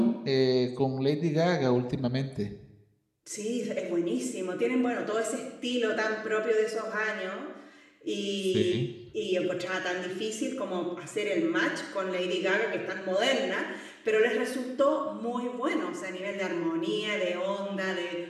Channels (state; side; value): identical; both; correlation 1.00